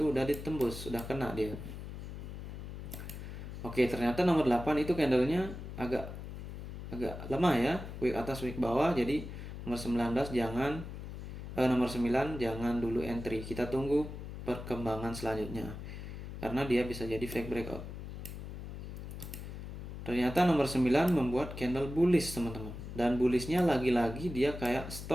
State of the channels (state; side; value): noise; left; hum, 9 dB below the sound